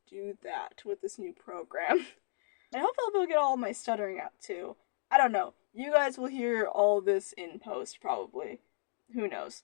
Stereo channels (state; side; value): silent; right; digital silence